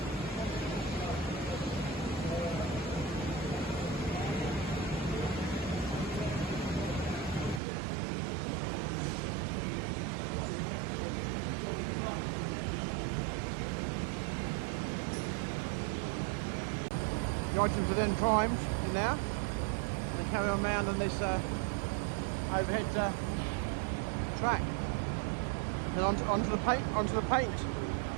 The items are then primed now. Carry on round on this overhead track, and onto the paint.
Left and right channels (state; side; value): drops out; left; at 7.6 s